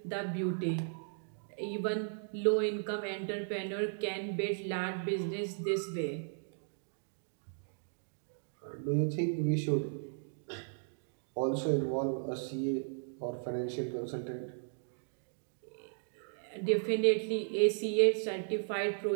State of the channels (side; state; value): left; silent; digital silence